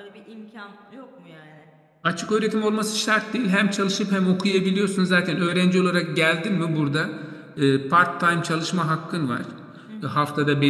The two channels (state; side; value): identical; both; correlation 1.00